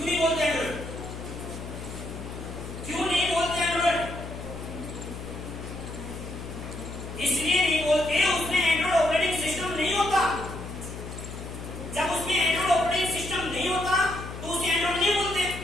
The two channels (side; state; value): left; noise; hum, 10 dB below the sound